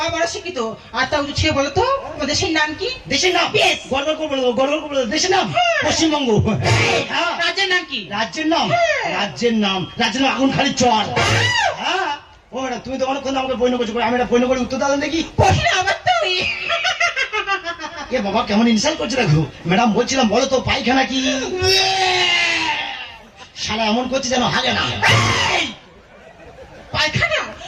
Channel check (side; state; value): both; identical; correlation 1.00